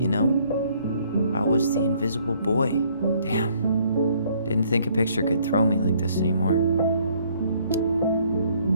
know? I was the invisible boy. Damn. Didn't think a picture could throw me like this anymore.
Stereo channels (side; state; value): both; inverted; correlation -0.64